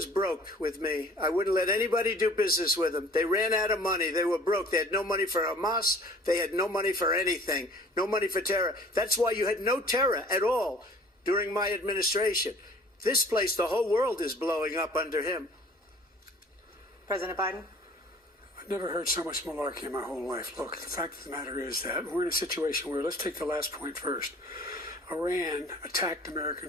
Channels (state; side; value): normal; both; correlation 0.49